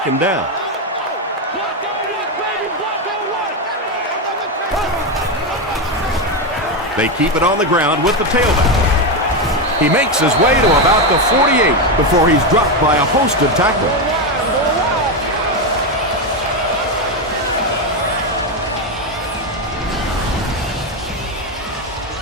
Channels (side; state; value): both; normal; correlation 0.10